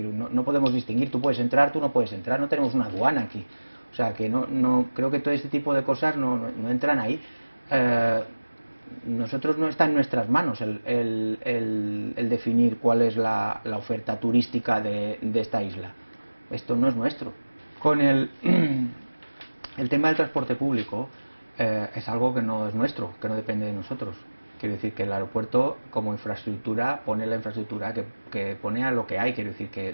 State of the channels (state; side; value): inverted; both; correlation -1.00